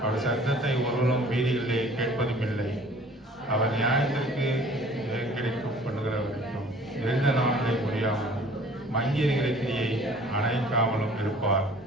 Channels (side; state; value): both; normal; correlation 0.51